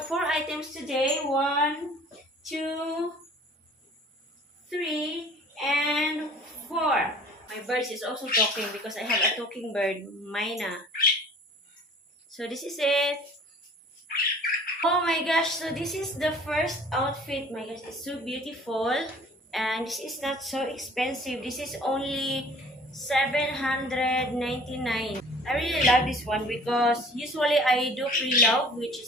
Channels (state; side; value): normal; both; correlation 0.49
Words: 4 items today. 1, 2, 3, and 4. My bird is also talking because I have a talking bird, Mina. So this is it. Oh my gosh, so this is the first outfit. My gosh, it's so beautiful. And this is not so expensive. This is only 799. I really love this one because usually I do pre-love, which